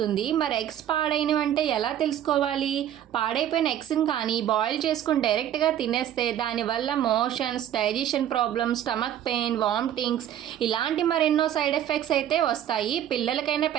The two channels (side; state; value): left; quieter; 10.9 dB